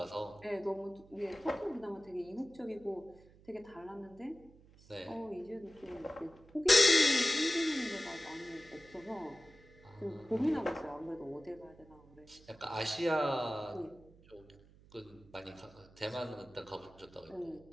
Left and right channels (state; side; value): noise; right; hum, 25 dB below the sound